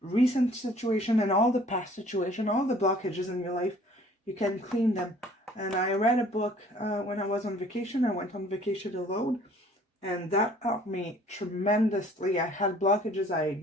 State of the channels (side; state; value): both; normal; correlation 0.54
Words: recent situation and all the past situation, all the blockages in your life, you can clean them. And I read a book when I was on vacation. I went on vacation alone, and that helped me tremendously. I had blockages I